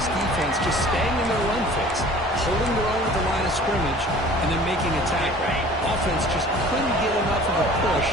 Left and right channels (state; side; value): normal; both; correlation 0.47